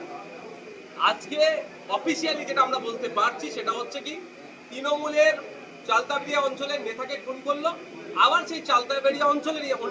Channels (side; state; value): both; identical; correlation 1.00